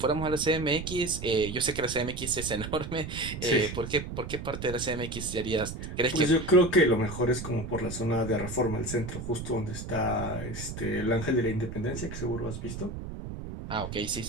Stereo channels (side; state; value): right; noise; rumble, 8 dB below the sound